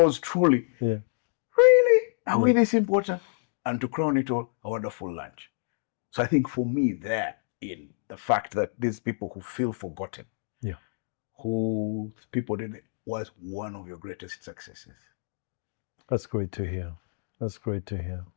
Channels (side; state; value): right; silent; digital silence